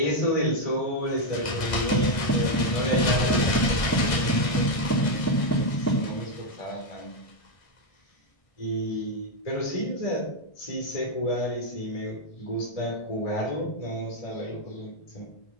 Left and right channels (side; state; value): right; late; 1.6 ms